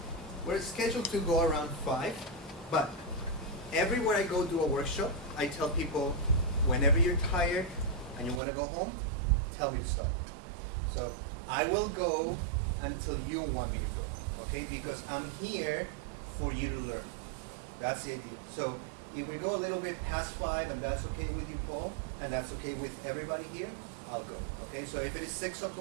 we're scheduled to go around 5, but everywhere I go do a workshop, I tell people, whenever you're tired and you want to go home, tell me to stop. So I will go until you want me to go, okay? Because I'm here for you to learn. That's the idea. So if we go a little bit past 5, and that's okay with you, Paul, and that's okay with everybody here, I'll go, okay? So if it is 6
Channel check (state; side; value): drops out; left; at 8.4 s